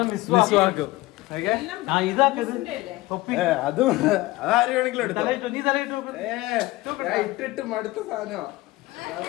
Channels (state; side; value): quieter; right; 19.4 dB